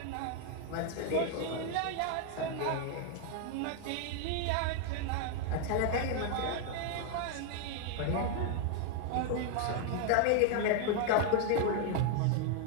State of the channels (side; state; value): both; different; correlation 0.00